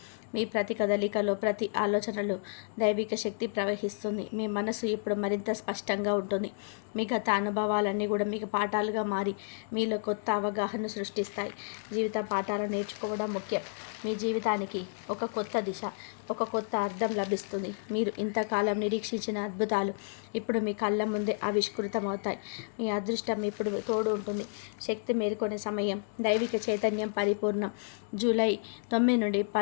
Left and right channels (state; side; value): silent; right; digital silence